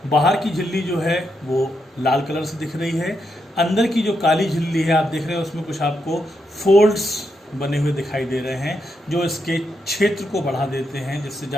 बाहर की झिल्ली जो है वो लाल कलर से दिख रही है। अंदर की जो काली झिल्ली है आप देख रहे हैं उसमें कुछ आपको फोल्ड्स बने हुए दिखाई दे रहे हैं जो इसके क्षेत्र को बढ़ा देते हैं, जिससे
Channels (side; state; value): both; normal; correlation 0.82